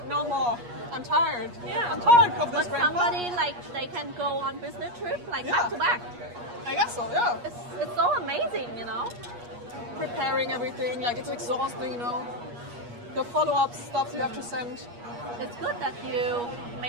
No more. I'm tired. Yeah. I'm tired of this. But somebody, like, they can go on business trip, like, back to back. I guess so, yeah. It's so amazing, you know? Preparing everything, like, it's exhausting, you know? The follow-up stuff you have to send. It's good that you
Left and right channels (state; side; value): late; left; 8.4 ms